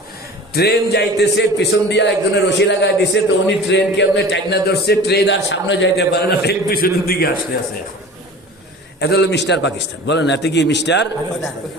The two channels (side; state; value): both; normal; correlation 0.40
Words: ট্রেন যাইতেছে, পিছন দিয়া একজনের রশি লাগাই দিছে, তো উনি ট্রেন কেমনে টাইনা ধরছে, ট্রেন আর সামনে যাইতে পারে না, ট্রেন পিছনের দিকে আসতে আছে। এটা হলো মিস্টার পাকিস্তান। বলেন এতে কি মিস্টার